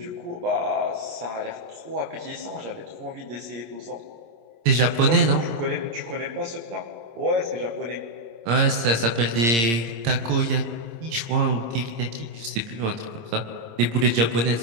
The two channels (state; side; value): late; left; 26 ms